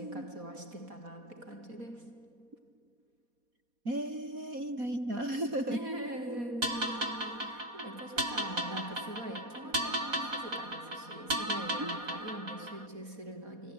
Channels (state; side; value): late; left; 4.2 ms